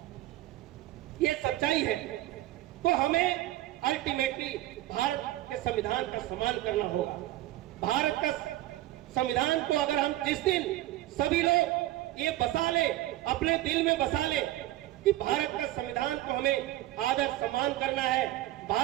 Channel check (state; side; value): quieter; left; 15.6 dB